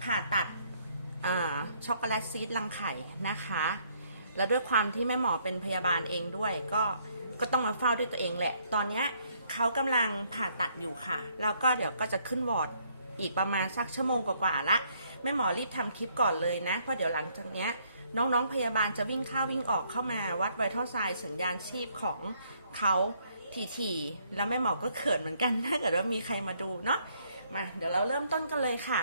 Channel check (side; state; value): both; inverted; correlation -0.68